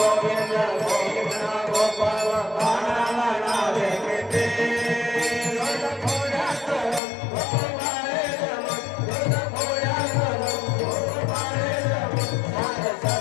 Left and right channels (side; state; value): right; drops out; at 7.0 s